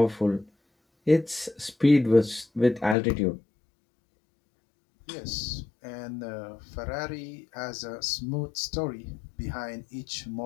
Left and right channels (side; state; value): right; drops out; at 3.0 s